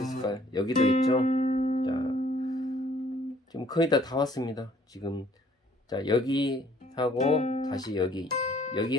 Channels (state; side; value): normal; both; correlation 0.59